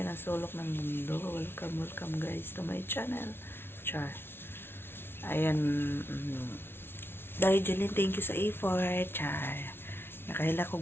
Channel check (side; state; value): right; late; 0.11 ms